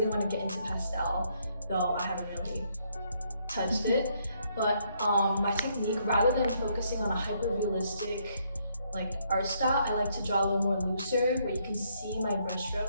want to get into pastel, though I haven't really touched it. But my technique, rather than focusing on a hyper-realistic like art style, I like to draw a little more looser, where you can see my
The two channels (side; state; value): both; inverted; correlation -0.71